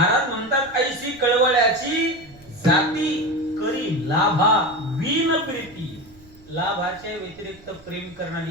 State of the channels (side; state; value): right; noise; rumble, 24 dB below the sound